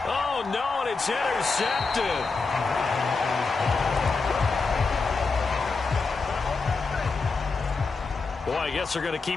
Oh, no, and it's intercepted. Boy, I guess they're going to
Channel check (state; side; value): quieter; right; 4.3 dB